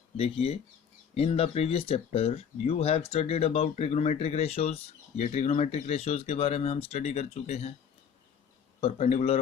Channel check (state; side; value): quieter; right; 7.5 dB